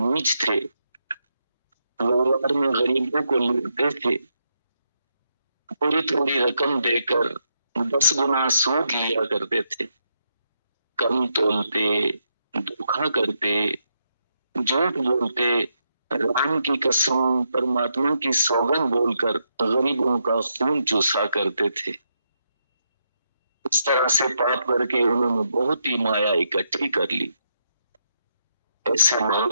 थे, व्यवहार में गरीबों को लूटते थे, थोड़ी थोड़ी रकम देकर 10 गुना सूद लिया करते थे, कम तोलते, धोखा करते, झूठ बोलते राम की कसम, परमात्मा की सौगंध बोलकर गरीबों का खून चूसा करते थे। इस तरह से पाप करके उन्होंने बहुत ही माया इकट्ठी कर ली। ऐसे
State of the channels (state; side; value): inverted; both; correlation -0.81